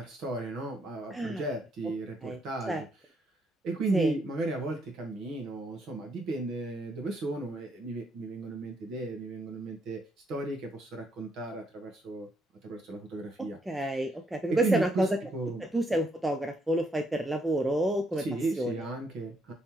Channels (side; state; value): both; normal; correlation 0.73